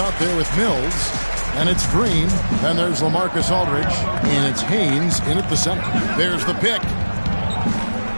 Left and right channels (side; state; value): both; inverted; correlation -1.00